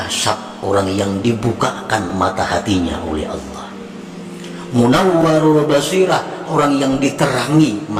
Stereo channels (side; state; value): both; identical; correlation 1.00